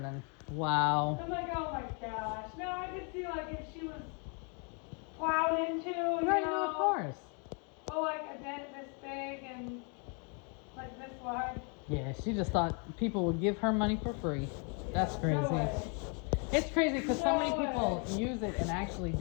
Wow. I'm like, oh my gosh. No, I could see like if she was plowed into, you Right, know, no, of course. oh, like a dent this big and like this wide. Yeah, she just thought people would give her money for free. That's crazy. No way. It's crazy because so many No people use it and actually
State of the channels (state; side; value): quieter; right; 37.0 dB